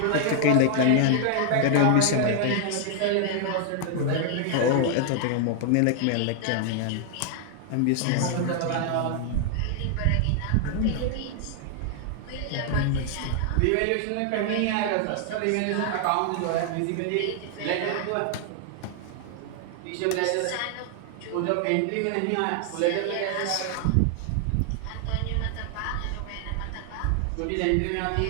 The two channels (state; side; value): different; both; correlation 0.00